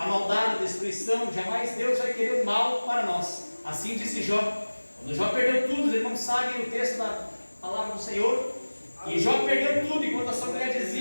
maldade, a destruição. Jamais Deus vai querer o mal para nós. Assim disse Jó. Quando Jó perdeu tudo, os irmãos sabem o texto da palavra do Senhor, e Jó perdeu tudo, enquanto a sua mulher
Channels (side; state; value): both; inverted; correlation -1.00